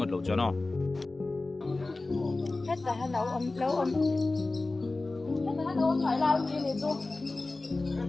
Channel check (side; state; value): right; quieter; 3.2 dB